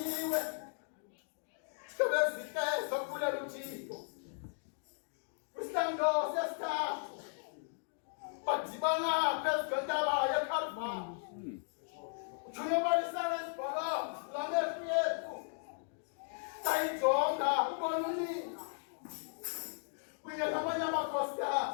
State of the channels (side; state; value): right; silent; digital silence